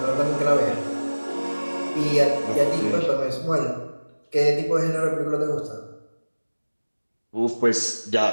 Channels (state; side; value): inverted; both; correlation -1.00